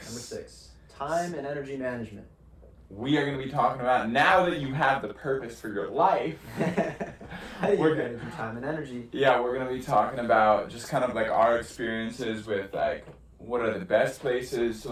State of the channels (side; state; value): both; identical; correlation 1.00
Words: Number 6. Time and energy management. We are going to be talking about, now that you have the purpose for your life. How do you manage your time and energy? Yeah, we're going to be talking about just kind of like our experiences with like, what are the best places to